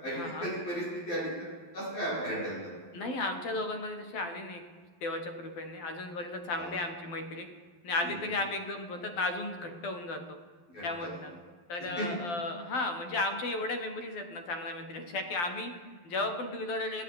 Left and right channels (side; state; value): right; late; 12 ms